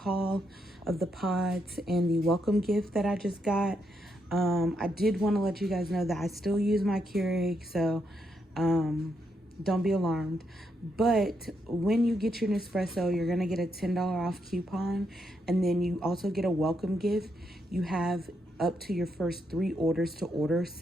of the pods and the welcome gift that I just got. I did want to let you guys know that I still use my Keurig, so don't be alarmed. But when you get your Nespresso, you're gonna get a $10 off coupon, and then you also get a welcome gift. You have up to your first 3 orders to order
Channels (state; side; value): normal; both; correlation 0.80